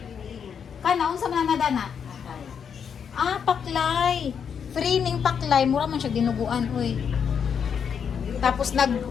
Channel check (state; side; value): quieter; right; 7.2 dB